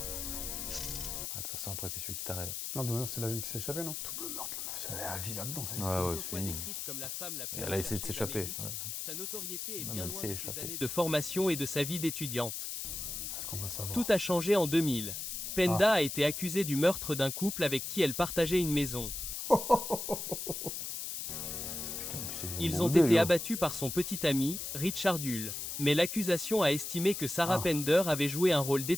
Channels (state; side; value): noise; left; hiss, 5 dB below the sound